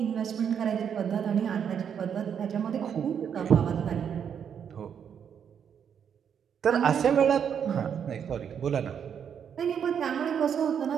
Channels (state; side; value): quieter; left; 7.9 dB